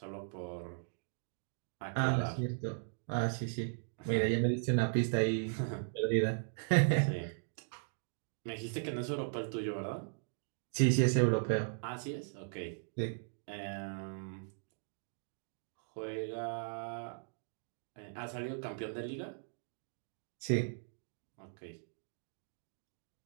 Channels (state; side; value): silent; left; digital silence